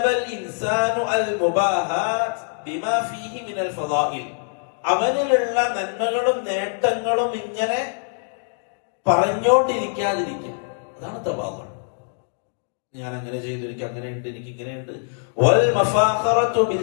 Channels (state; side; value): silent; right; digital silence